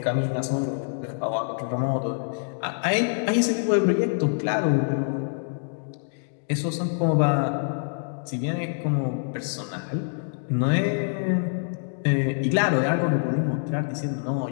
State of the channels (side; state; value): right; silent; digital silence